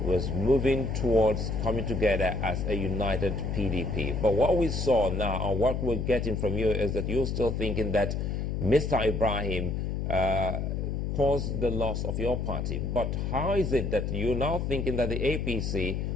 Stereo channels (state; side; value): noise; left; hum, 1 dB below the sound